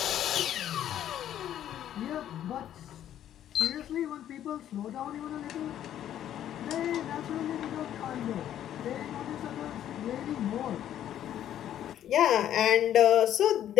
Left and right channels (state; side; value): quieter; right; 11.1 dB